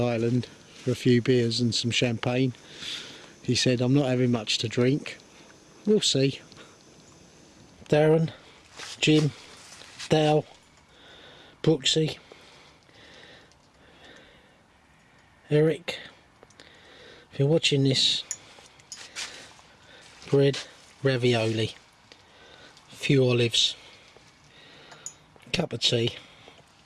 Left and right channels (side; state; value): both; identical; correlation 1.00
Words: for a few beers and some champagne. He said, I'm not having much to drink. We'll see. Darren, Jim, Dale, Brooksy, Eric. If you're watching this, bread, ravioli, a few olives, cup of tea,